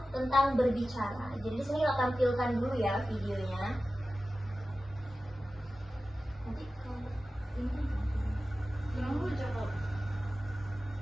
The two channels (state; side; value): normal; both; correlation 0.95